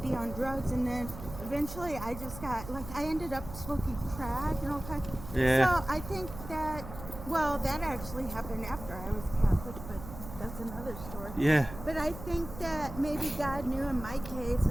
on drugs. And then eventually I just got, like, I ended up smoking crack and all kinds. Yeah. So I think that, well, that actually happened after I was Catholic, but that's another story. Yeah. But I think that maybe God knew in my case,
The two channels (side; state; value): right; noise; hum, 12 dB below the sound